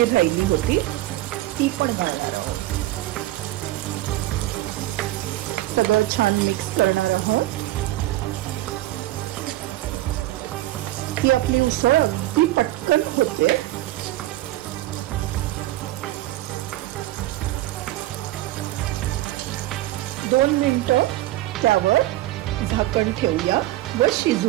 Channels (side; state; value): left; quieter; 16.2 dB